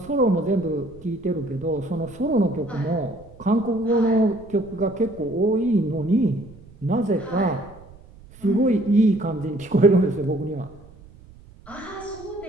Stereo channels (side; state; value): right; noise; rumble, 22 dB below the sound